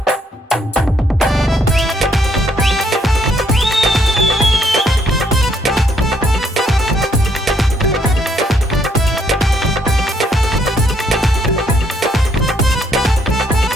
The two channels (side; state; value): both; normal; correlation 0.70